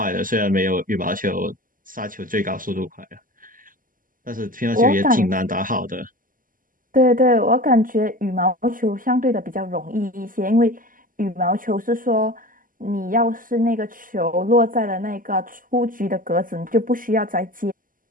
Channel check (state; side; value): late; left; 0.40 ms